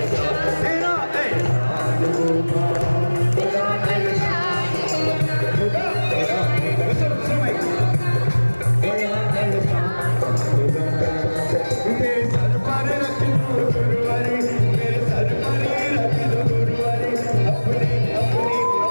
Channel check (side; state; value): both; inverted; correlation -1.00